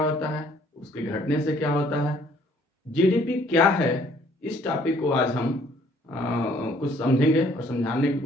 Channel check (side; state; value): both; normal; correlation 0.61